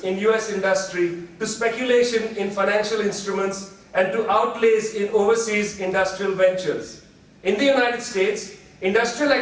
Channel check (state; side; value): identical; both; correlation 1.00